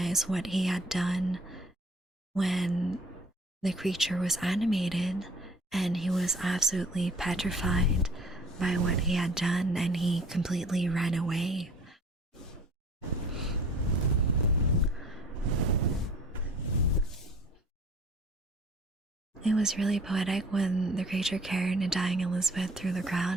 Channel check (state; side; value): normal; both; correlation 0.50